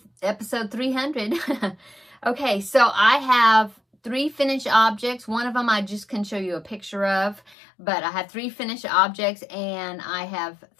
episode 300. Okay, so I have 3 finished objects. One of them I just can show you a picture of, but I have 3 finished objects and I have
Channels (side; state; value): right; drops out; at 7.6 s